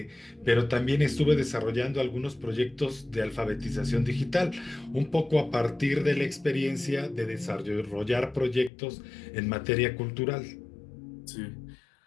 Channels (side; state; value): right; drops out; at 8.7 s